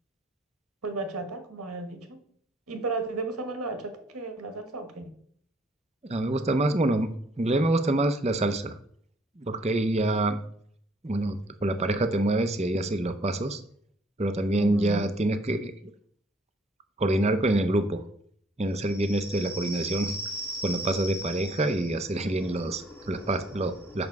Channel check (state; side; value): normal; both; correlation 0.63